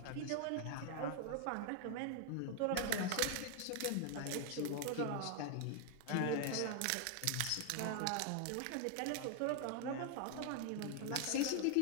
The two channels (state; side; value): different; both; correlation 0.00